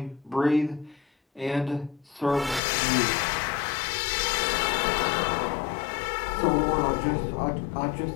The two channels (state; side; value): drops out; right; at 2.6 s